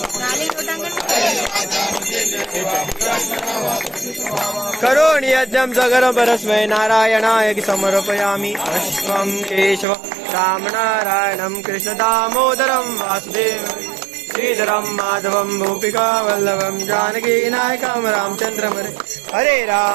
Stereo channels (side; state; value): left; drops out; at 9.9 s